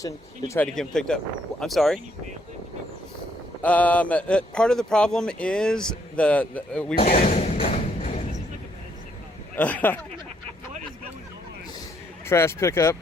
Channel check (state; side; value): normal; both; correlation 0.71